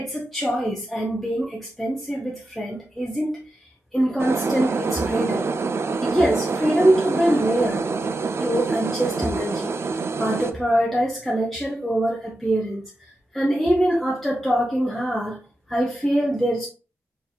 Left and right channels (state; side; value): normal; both; correlation 0.90